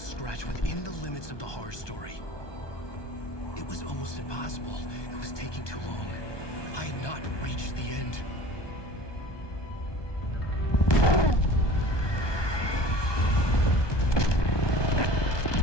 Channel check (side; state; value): right; late; 1.2 ms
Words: within the limits of the horror story. It was almost impossible. It was taking too long. I had not reached the end.